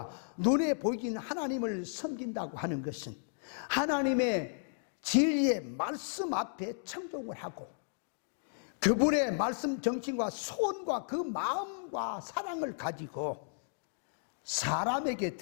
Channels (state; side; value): silent; right; digital silence